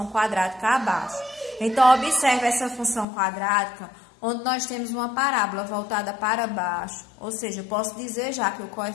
quadrática abaixo. Então, observe essa função quadrática, onde nós temos uma parábola voltada para baixo, ou seja, eu posso dizer já que o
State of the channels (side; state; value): right; drops out; at 3.1 s